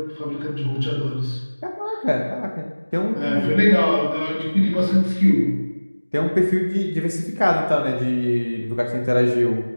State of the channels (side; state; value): both; inverted; correlation -1.00